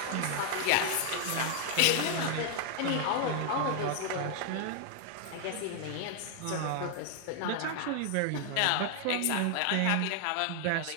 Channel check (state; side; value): different; both; correlation 0.00